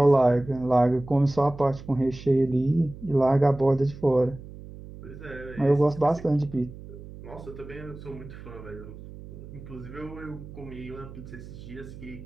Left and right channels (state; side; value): noise; right; hum, 15 dB below the sound